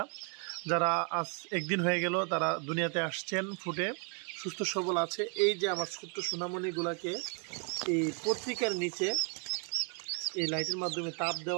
যারা আজ একদিন হয়ে গেল তারা দুনিয়াতে আসছেন, ফুটে সুস্থ সবল আছে। এই যে আমার ছোট্ট সোনামণিগুলাকে এই পত্রিকার নিচে এই লাইটের মাধ্যমে তাপ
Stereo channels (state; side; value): quieter; left; 38.5 dB